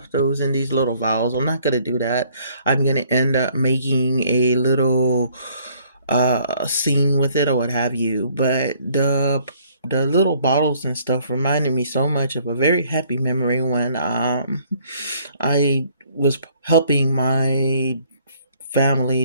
those in these little vials. I'm not gonna do that. I'm gonna end up making a little scene with it or what have you. But the little bottles and stuff reminded me so much of a very happy memory when I was helping my family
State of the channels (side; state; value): both; inverted; correlation -0.62